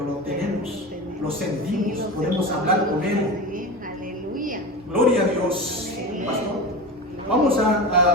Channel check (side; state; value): both; normal; correlation 0.26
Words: lo tenemos, lo sentimos, podemos hablar con Él. Aleluya. Gloria a Dios, pastor. Vamos